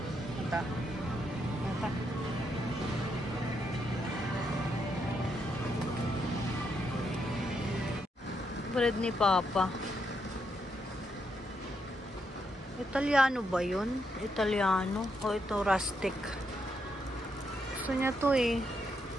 Ito. Ito. Bread ni Papa. Italiano ba yun? Italiano? O ito rustic? Gusto niya to eh.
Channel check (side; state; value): both; normal; correlation 0.79